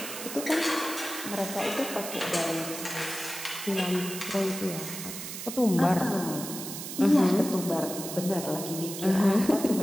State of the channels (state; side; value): noise; right; hiss, 8 dB below the sound